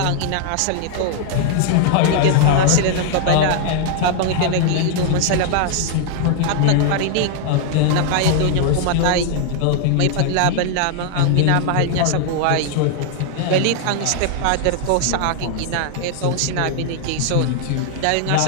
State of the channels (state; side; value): different; both; correlation 0.00